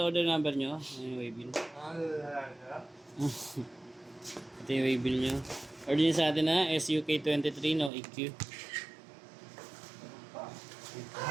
number nyo. Ano yung waybill? Ito yung waybill nyo. Order niyo sa atin na SUK23 no EQ.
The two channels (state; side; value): drops out; left; at 7.9 s